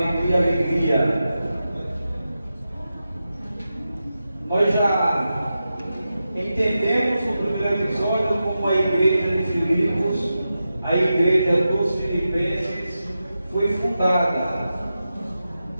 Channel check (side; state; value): both; inverted; correlation -0.91